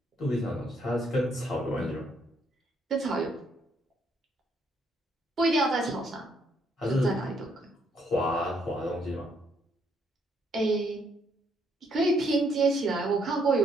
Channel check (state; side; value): normal; both; correlation 0.71